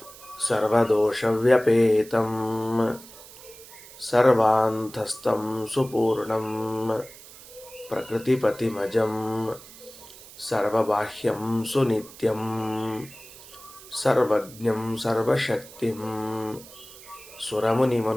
ಸರ್ವದೋಷವ್ಯಪೇತಂ ಸರ್ವಾಂತಸ್ಥಂ ಸುಪೂರ್ಣಂ ಪ್ರಕೃತಿಪತಿಮಜಂ ಸರ್ವಬಾಹ್ಯಂ ಸುನಿತ್ಯಂ ಸರ್ವಜ್ಞಂ ಸರ್ವಶಕ್ತಿಂ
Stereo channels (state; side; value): noise; right; hiss, 19 dB below the sound